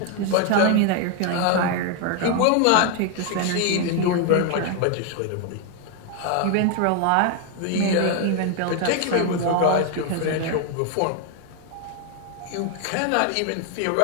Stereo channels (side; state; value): both; different; correlation 0.01